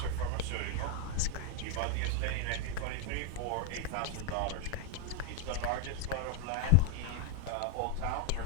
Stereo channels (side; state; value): both; different; correlation 0.00